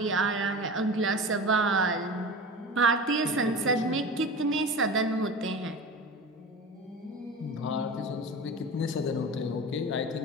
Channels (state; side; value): normal; both; correlation 0.32